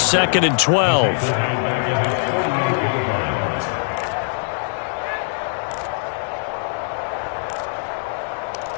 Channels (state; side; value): silent; right; digital silence